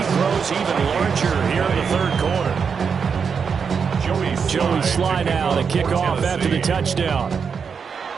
grows even larger here in the 3rd quarter. Joey Sly now to kick off after the touchdown.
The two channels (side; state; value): left; quieter; 6.2 dB